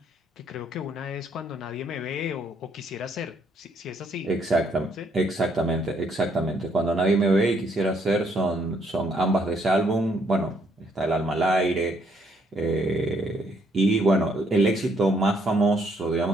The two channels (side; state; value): both; normal; correlation 0.70